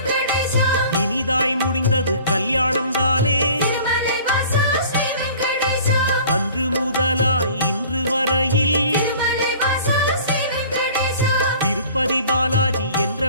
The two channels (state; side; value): inverted; both; correlation -0.47